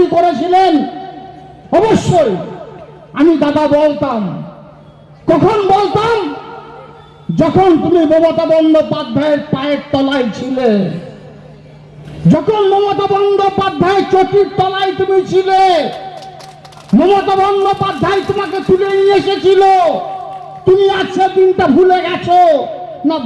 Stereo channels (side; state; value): both; identical; correlation 1.00